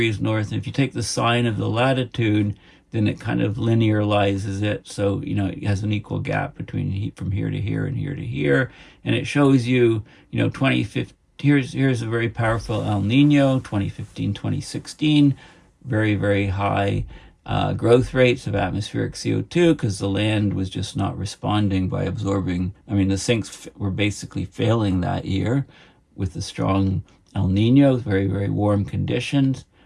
north. And if you take the sine of the latitude, then it kind of linearizes it. So, it has an equal gap between heat from here to here and here to here. And it shows you, here's a very powerful El Nino, 2015, 2016, very, very high growth rates of atmospheric CO2 because the land was just not responding by absorbing. I mean, the sinks were basically failing that year with the strong El Nino, very, very warm conditions,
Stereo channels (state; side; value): identical; both; correlation 1.00